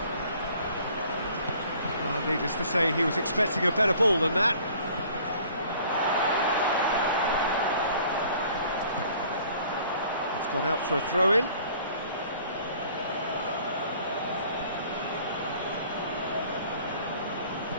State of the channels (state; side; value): inverted; both; correlation -0.54